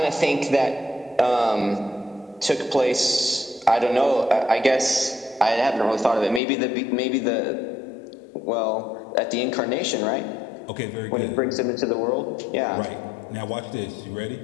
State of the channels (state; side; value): drops out; right; at 6.4 s